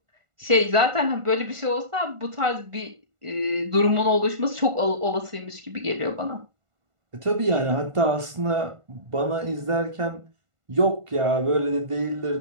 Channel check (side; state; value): left; late; 1.5 ms